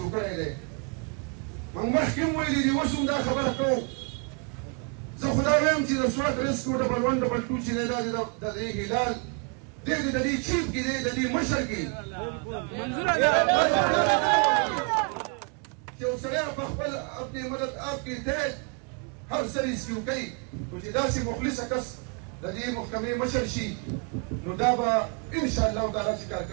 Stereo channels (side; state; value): left; quieter; 36.0 dB